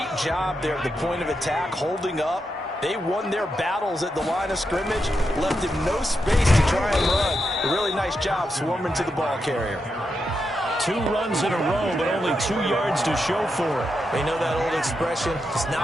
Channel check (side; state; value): both; normal; correlation 0.85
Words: job there at the point of attack, holding up. They won their battles at the line of scrimmage, left him no space to try and run. A really nice job swarming to the ball carrier. 2 runs in a row, but only 2 yards to show for it. They know that old expression, it's